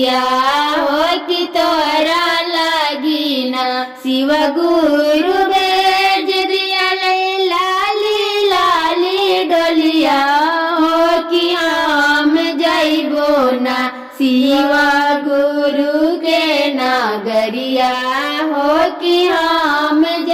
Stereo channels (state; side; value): identical; both; correlation 1.00